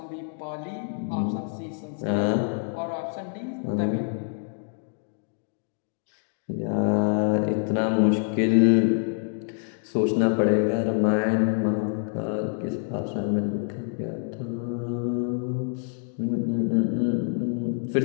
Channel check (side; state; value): right; silent; 60 dB below the other